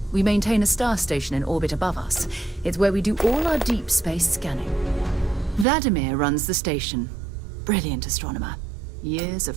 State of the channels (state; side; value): drops out; left; at 5.7 s